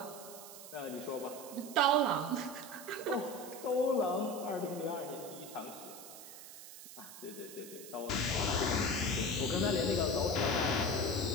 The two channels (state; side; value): noise; right; hiss, 14 dB below the sound